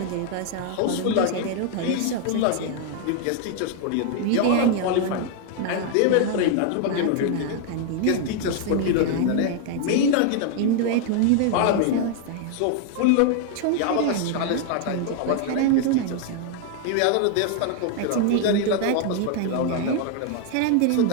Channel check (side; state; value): both; different; correlation 0.00